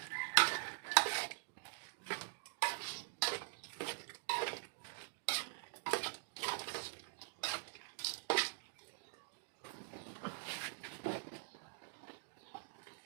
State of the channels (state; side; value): silent; left; digital silence